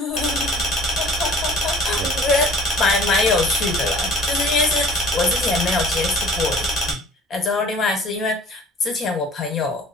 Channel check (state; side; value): normal; both; correlation 0.49